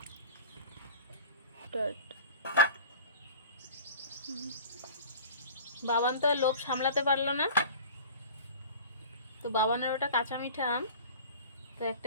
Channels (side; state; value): both; inverted; correlation -0.40